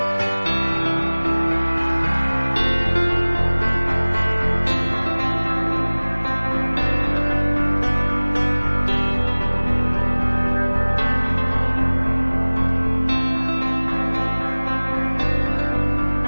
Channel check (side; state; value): both; inverted; correlation -1.00